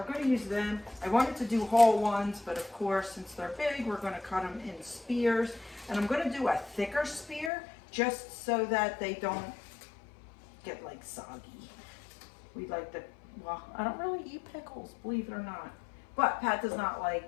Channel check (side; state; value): right; drops out; at 7.5 s